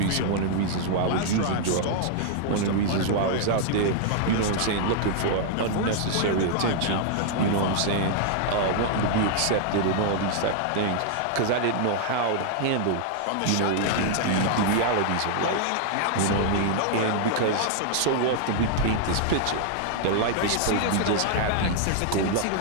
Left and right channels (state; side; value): different; both; correlation -0.01